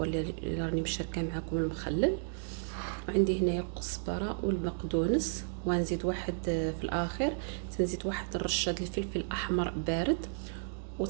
اللي راني مشاركه معكم المخلل، وعندي هنايا الكزبره والبقدونس، ونزيد واحد في الاخر تنزيد واحد الرشه ديال الفلفل الاحمر بارد،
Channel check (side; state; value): left; silent; digital silence